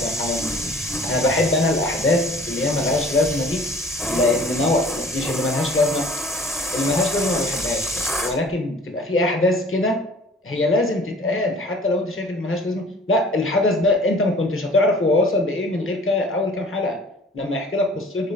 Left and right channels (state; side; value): normal; both; correlation 0.49